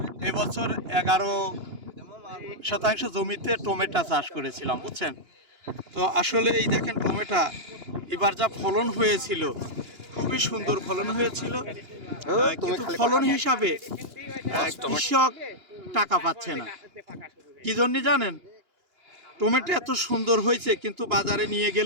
এবছর 11% জমিতে টমেটো চাষ করেছিলাম, বুঝছেন তো। আসলে এই দেখেন টমেটো এবার যা ফলন হয়েছিল, খুবই সুন্দর ফলন হয়েছিল, কিন্তু ফলন হিসাবে কৃষক টাকা পাচ্ছে না। কি জন্য জানেন? টমেটো এত সুন্দর হয়েছে, কিন্তু বাজারে নিয়ে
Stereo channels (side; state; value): left; late; 2.9 ms